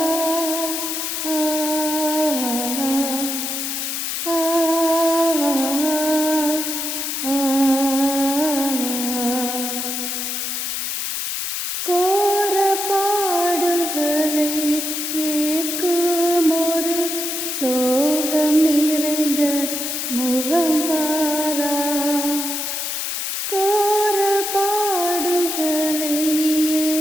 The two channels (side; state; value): left; noise; hiss, 3 dB below the sound